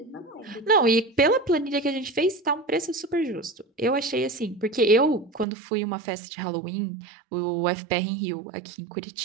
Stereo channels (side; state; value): left; drops out; at 5.5 s